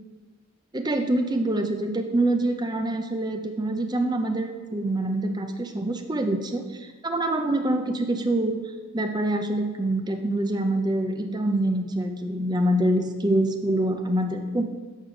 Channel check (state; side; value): normal; both; correlation 0.74